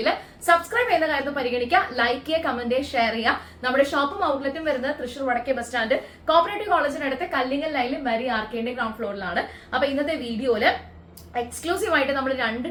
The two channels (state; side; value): identical; both; correlation 1.00